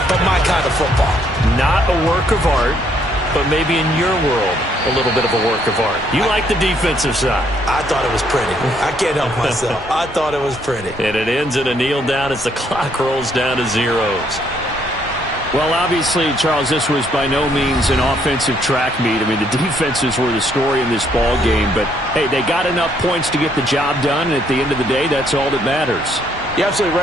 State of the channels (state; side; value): normal; both; correlation 0.69